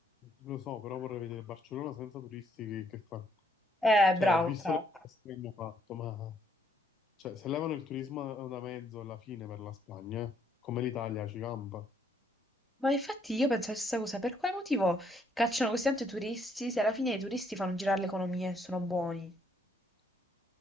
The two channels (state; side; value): normal; both; correlation 0.70